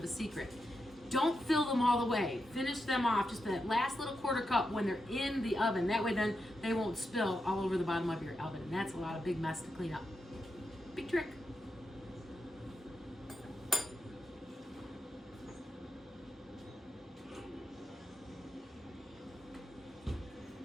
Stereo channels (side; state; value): both; normal; correlation 0.87